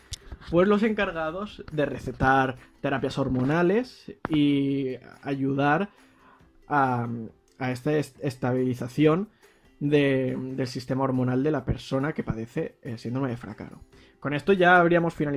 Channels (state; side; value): identical; both; correlation 1.00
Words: pues los encargados de recetar terapias hormonales y ayudar a esta estabilización del sistema hormonal de la persona que padece el síndrome de Fracaro. Con esto ya habríamos